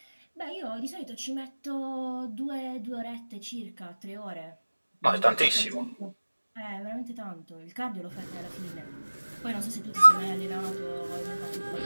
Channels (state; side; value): inverted; both; correlation -1.00